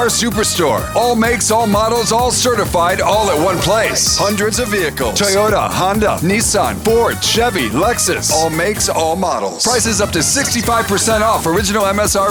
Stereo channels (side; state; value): both; identical; correlation 1.00